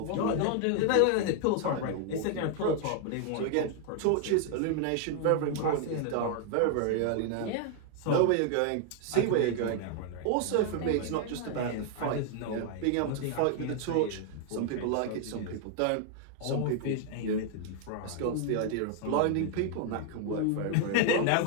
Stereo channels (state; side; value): different; both; correlation 0.00